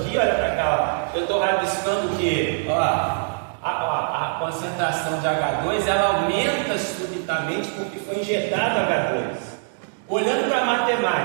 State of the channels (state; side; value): silent; left; digital silence